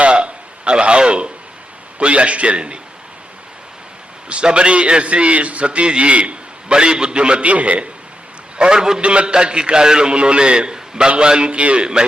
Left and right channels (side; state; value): both; normal; correlation 0.84